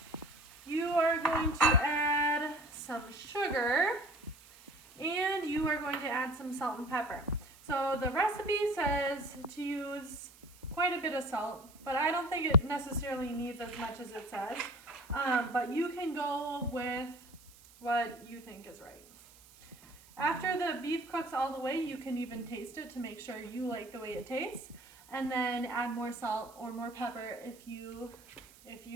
You are going to add some sugar, and you are going to add some salt and pepper. So the recipe says to use quite a bit of salt, but I don't think it necessarily needs as much as it says. But you can go with what you think is right. After the beef cooks all the way, you can even taste it to make sure you like the way it tastes, and then add more salt or more pepper if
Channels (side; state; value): right; noise; hiss, 24 dB below the sound